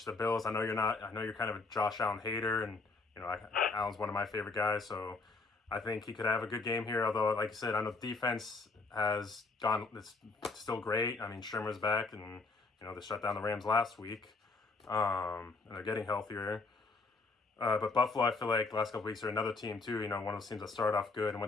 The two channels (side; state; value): right; quieter; 3.9 dB